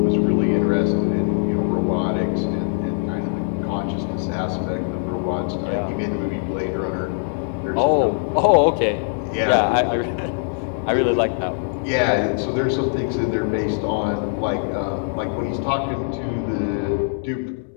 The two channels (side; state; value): right; silent; 64 dB below the other